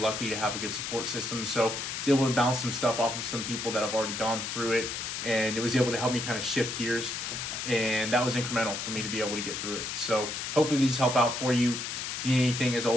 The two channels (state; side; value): noise; left; hiss, 4 dB below the sound